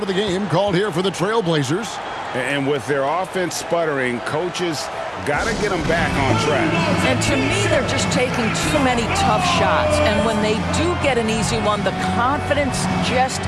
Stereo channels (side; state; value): both; identical; correlation 1.00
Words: of the game called here for the Trailblazers. And with their offense sputtering, coaches got to get them back on track. And to me, they're just taking too many tough shots. And when they do get an easy one, the confidence just